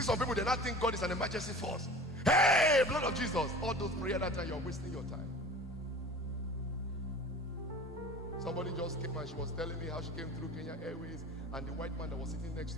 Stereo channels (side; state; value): both; normal; correlation 0.40